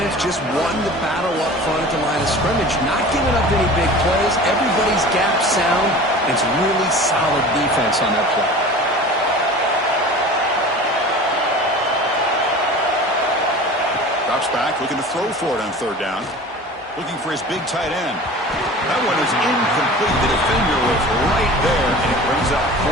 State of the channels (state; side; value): normal; both; correlation 0.39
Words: just won the battle up front at the line of scrimmage, not giving up any big plays. Everybody's gap sound. It's really solid defense on that play. Drops back, looking to throw for it on 3rd down. Looking for his big tight end. That one is incomplete. The defender was right there, and it brings up